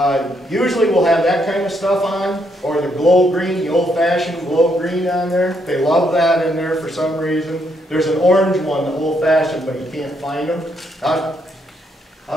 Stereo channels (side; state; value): both; normal; correlation 0.75